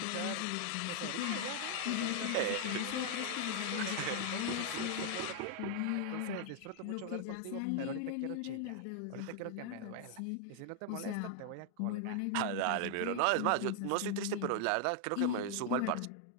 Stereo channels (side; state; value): both; different; correlation 0.00